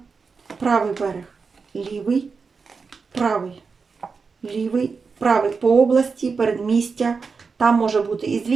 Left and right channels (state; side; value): quieter; left; 5.0 dB